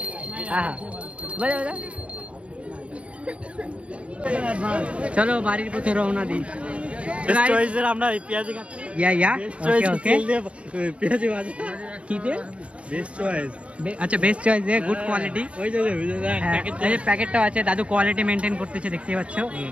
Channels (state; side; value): late; left; 0.062 ms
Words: हाँ बजा चलो बाড়ির পথে রওনা দিই। আমরা পেঁয়াজি খাচ্ছি। या ओके পেঁয়াজি ভাজি কি দে বেস্ট চয়েস। আচ্ছা বেস্ট চয়েস দে, গুড কোয়ালিটি। ওই যে এই প্যাকেটটাও আছে, দাদু কোয়ালিটি মেনটেন করতেছে, দেখতে পাচ্ছ।